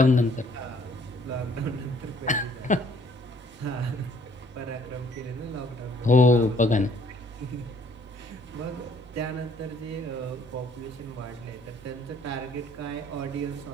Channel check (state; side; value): normal; both; correlation 0.61